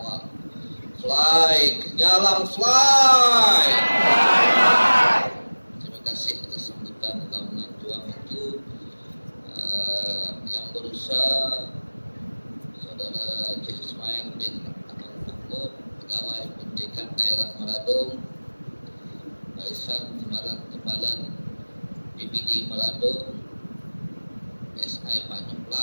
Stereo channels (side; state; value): both; inverted; correlation -1.00